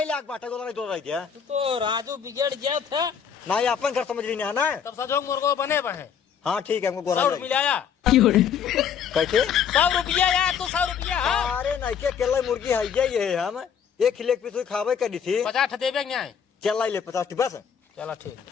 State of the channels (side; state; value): right; quieter; 7.6 dB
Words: लाग बाटे गोला दो रह गया तू तो राजू बिगड़ गया था ना ये अपन घर समझ रही है ना तब सजोग मुर्गो बने बने हाँ ठीक है हमको गोला 100 मिलाया कैसे 100 रुपया यार तू 100 रुपया हाँ अरे नहीं के केला मुर्गी है ये हम एक लेग पीस खावे करी थी 50 देवे न्याय चल लाई ले 50 बस चला ठीक